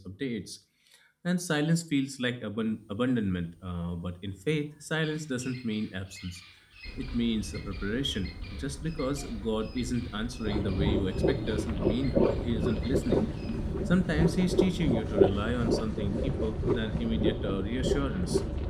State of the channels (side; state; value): both; identical; correlation 1.00